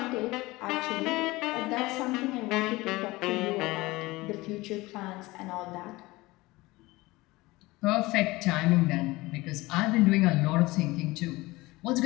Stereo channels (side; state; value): right; quieter; 20.7 dB